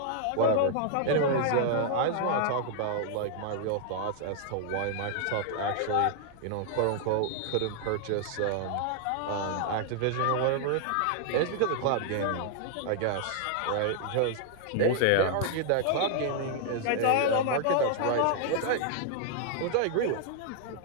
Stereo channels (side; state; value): both; different; correlation 0.00